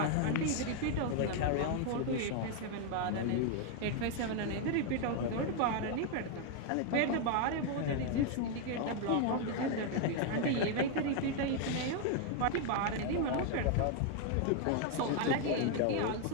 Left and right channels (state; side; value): different; both; correlation 0.00